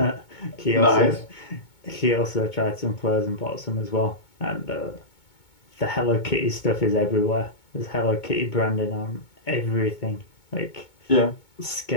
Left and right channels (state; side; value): late; right; 2.2 ms